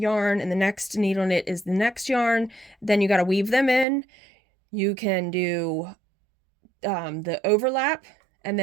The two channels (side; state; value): left; drops out; at 3.9 s